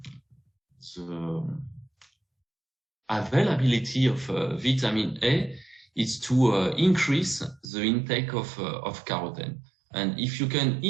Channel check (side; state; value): left; drops out; at 7.7 s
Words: availability of vitamin A is to increase the intake of carotene. And if you can